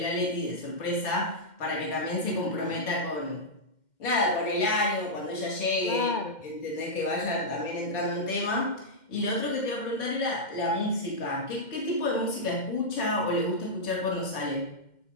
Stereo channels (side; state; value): right; late; 2.1 ms